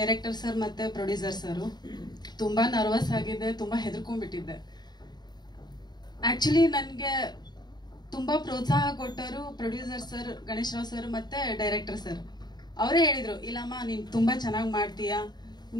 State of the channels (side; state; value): right; late; 0.20 ms